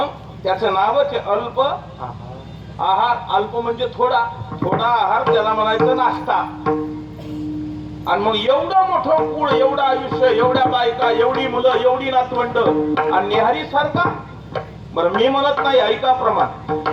त्याचं नावच आहे अल्प आहार. अल्प म्हणजे थोडा, थोडा आहार, त्याला म्हणायचं नाश्ता. आणि मग एवढं मोठं कुळ, एवढं आयुष्य, एवढ्या बायका, एवढी मुलं, एवढी नातवंड, आणि न्याहारी सारखा. बरं, मी म्हणत नाही, ऐका प्रमाण.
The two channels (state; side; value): identical; both; correlation 1.00